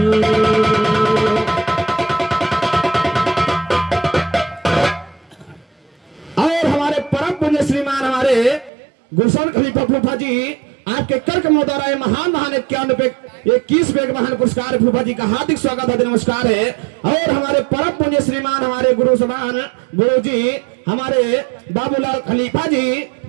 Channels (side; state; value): left; drops out; at 8.7 s